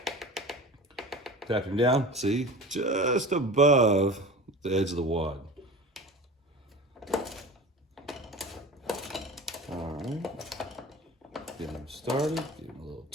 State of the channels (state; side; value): normal; both; correlation 0.35